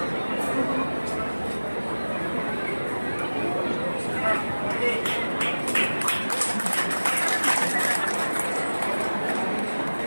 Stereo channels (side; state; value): both; inverted; correlation -1.00